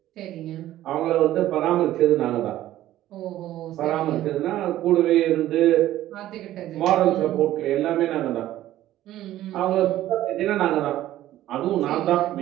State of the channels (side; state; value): left; quieter; 13.9 dB